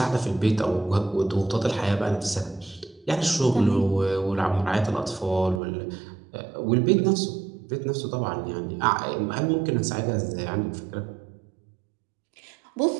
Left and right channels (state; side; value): drops out; left; at 5.6 s